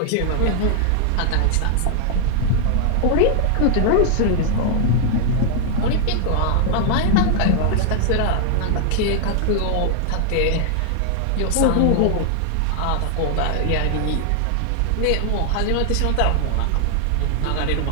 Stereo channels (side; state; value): both; different; correlation 0.00